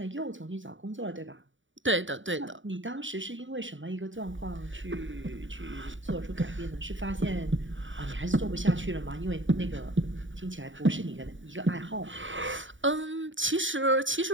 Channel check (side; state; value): left; late; 0.56 ms